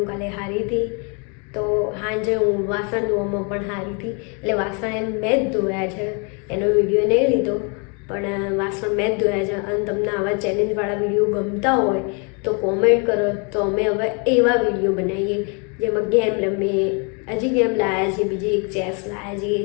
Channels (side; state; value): right; quieter; 35.1 dB